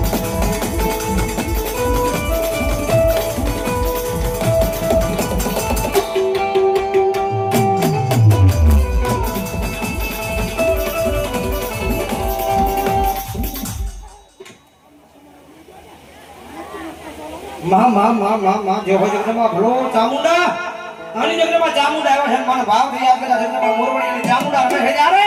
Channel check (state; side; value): identical; both; correlation 1.00